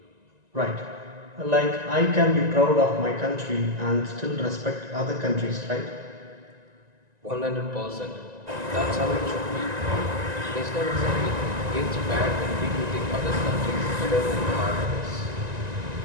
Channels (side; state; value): left; late; 1.9 ms